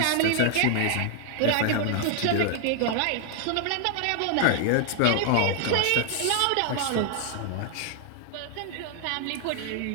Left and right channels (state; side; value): different; both; correlation 0.00